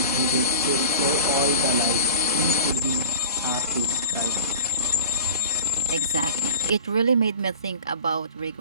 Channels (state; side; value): inverted; both; correlation -0.39